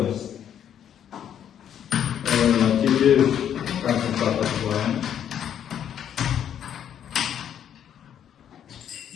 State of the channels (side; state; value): right; quieter; 9.5 dB